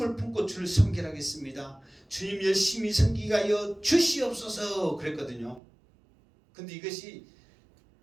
품고 주를 섬기라겠습니다. 주님 열심히 섬기게 하여 주시옵소서 그랬거든요. 근데 이것이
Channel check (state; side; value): drops out; left; at 5.6 s